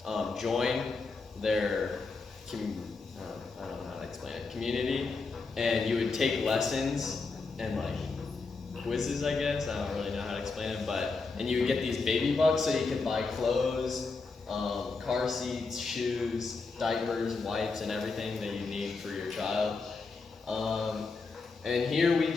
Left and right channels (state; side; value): quieter; right; 4.2 dB